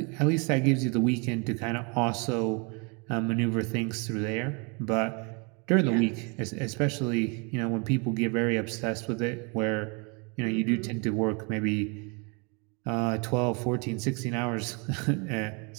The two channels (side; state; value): left; quieter; 32.6 dB